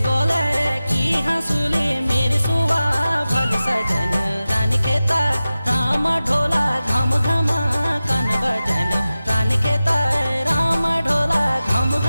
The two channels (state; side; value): inverted; both; correlation -0.95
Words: गोले की हंसुली मेरी सुआ भली सजन रानी खेता राम ढोला घम घमा कन बजा